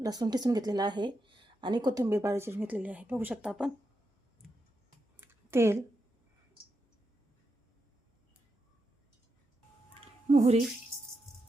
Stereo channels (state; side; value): normal; both; correlation 0.85